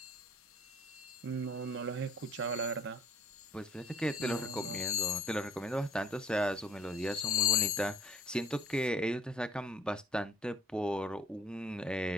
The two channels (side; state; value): both; normal; correlation 0.52